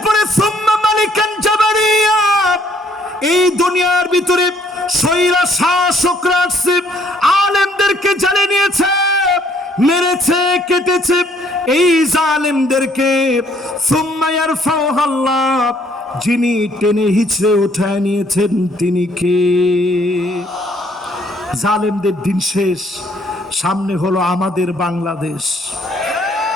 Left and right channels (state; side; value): normal; both; correlation 0.65